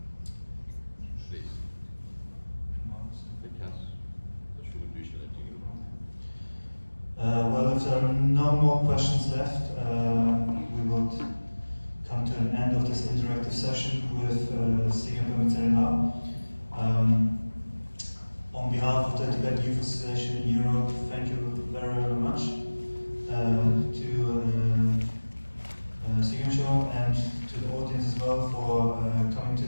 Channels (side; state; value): both; inverted; correlation -1.00